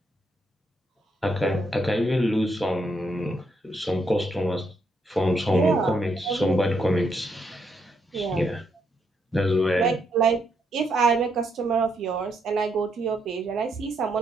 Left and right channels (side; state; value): both; normal; correlation 0.77